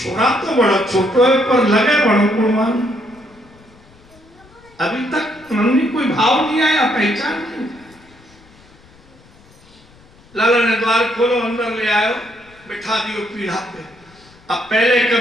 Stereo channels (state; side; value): noise; left; rumble, 27 dB below the sound